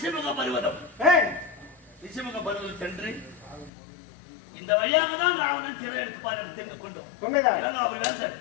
பருவதம். ரிஷிமுக பருவதம் சென்று இந்த வழியாக தான் ராவணன் சிறை எடுத்துப்பார் என்று தெரிந்து கொண்டோம். அவர்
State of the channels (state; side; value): drops out; right; at 3.7 s